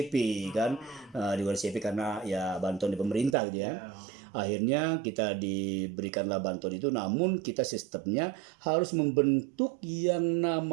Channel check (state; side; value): drops out; left; at 3.4 s